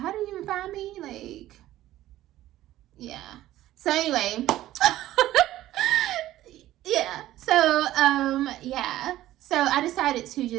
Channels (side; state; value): left; quieter; 14.5 dB